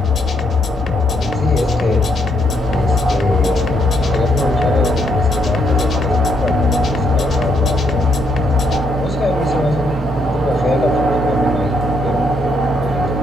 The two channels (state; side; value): normal; both; correlation 0.74